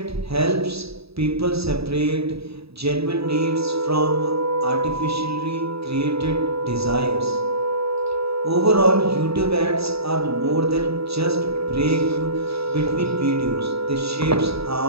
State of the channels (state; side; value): late; left; 0.77 ms